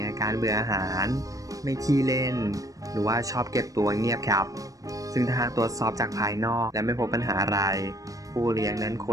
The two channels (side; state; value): left; late; 0.16 ms